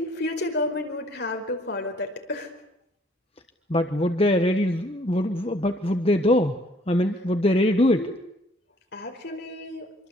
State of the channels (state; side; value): normal; both; correlation 0.60